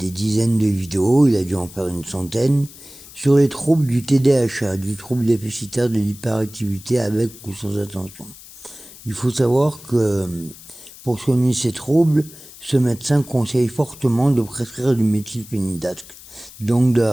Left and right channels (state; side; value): noise; left; hiss, 19 dB below the sound